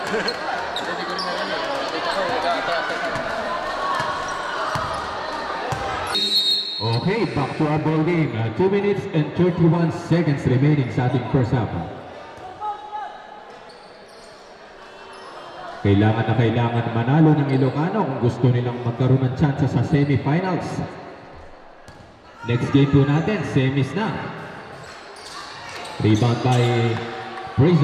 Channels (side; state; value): both; identical; correlation 1.00